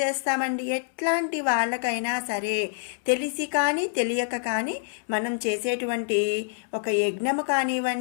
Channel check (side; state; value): right; silent; 61 dB below the other